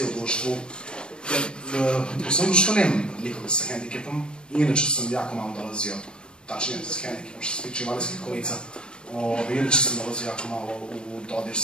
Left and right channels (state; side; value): late; right; 0.054 ms